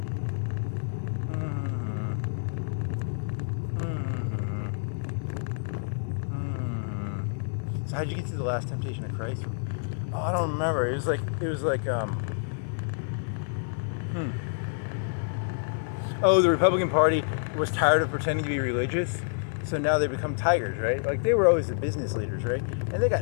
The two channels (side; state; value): right; silent; 59 dB below the other